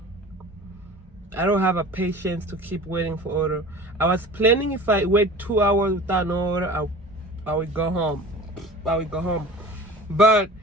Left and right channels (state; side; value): normal; both; correlation 0.40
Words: I don't have a patience to keep waiting for order. I was planning if I wait 2 hours without no order, I would go home. But